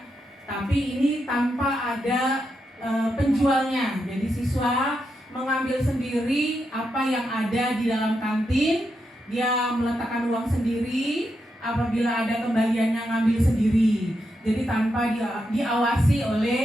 tapi ini tanpa ada penjualnya. Jadi siswa mengambil sendiri apa yang ada di dalam kantin, dia meletakkan uang sendiri, apabila ada kembaliannya ngambil sendiri. Jadi tanpa diawasi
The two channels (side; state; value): both; normal; correlation 0.84